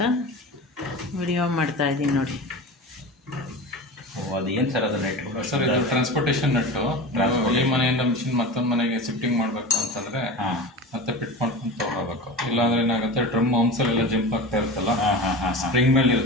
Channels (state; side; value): normal; both; correlation 0.31